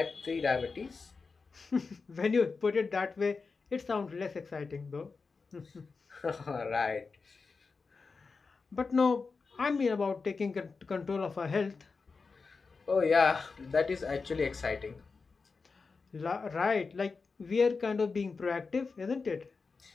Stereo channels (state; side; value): quieter; right; 4.6 dB